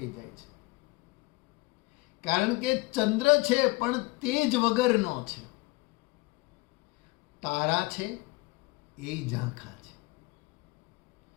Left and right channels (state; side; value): quieter; right; 23.5 dB